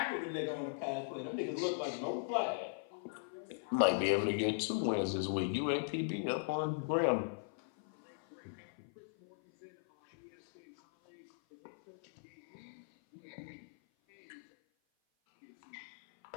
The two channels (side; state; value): right; silent; 52 dB below the other